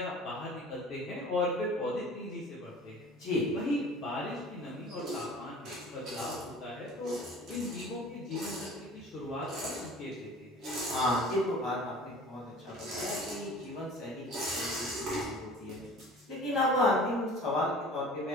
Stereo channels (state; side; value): normal; both; correlation 0.44